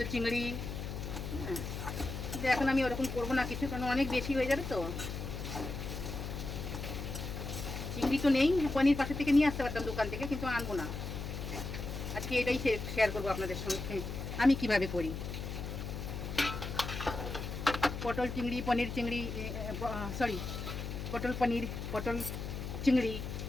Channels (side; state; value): left; noise; hum, 6 dB below the sound